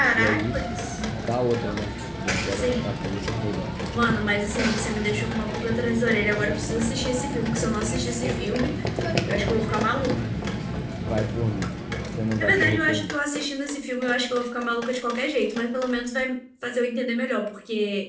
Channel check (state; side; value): identical; both; correlation 1.00